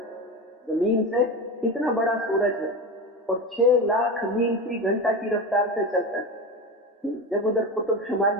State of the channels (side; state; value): both; normal; correlation 0.24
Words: जमीन से इतना बड़ा सूरज है और 6 लाख मील फी घंटा की रफ्तार से चलता है। जब उधर कुतुब